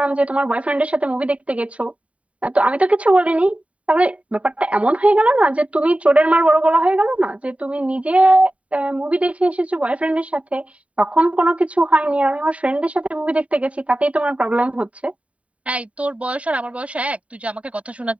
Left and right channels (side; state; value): left; late; 0.066 ms